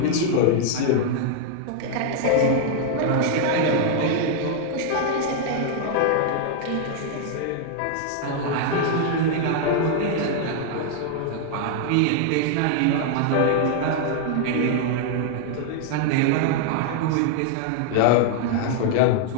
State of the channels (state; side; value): different; both; correlation 0.00